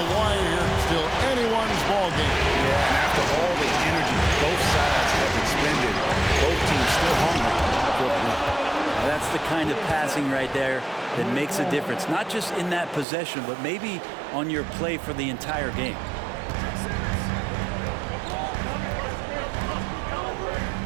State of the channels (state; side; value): drops out; left; at 13.1 s